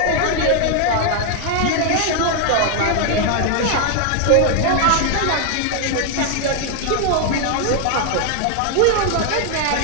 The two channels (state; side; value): different; both; correlation 0.00